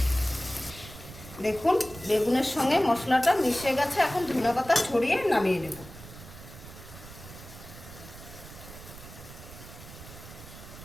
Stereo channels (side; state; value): right; noise; rumble, 16 dB below the sound